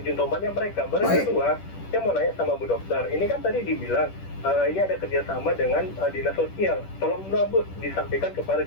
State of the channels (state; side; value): late; right; 10 ms